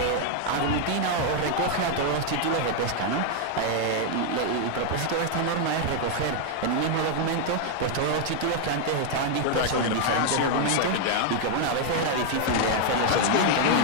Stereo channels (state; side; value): different; both; correlation 0.00